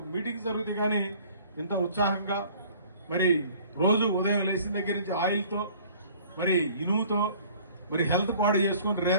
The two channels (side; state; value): both; inverted; correlation -0.51